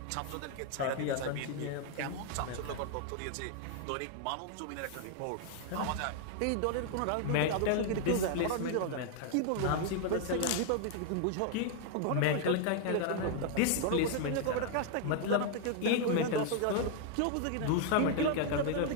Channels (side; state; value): both; different; correlation 0.00